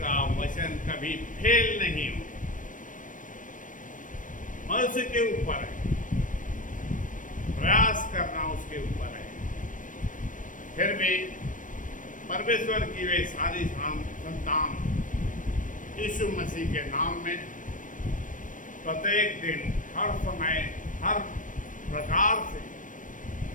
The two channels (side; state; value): right; late; 0.38 ms